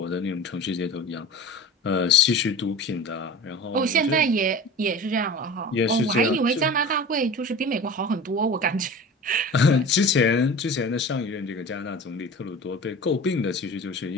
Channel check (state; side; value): normal; both; correlation 0.36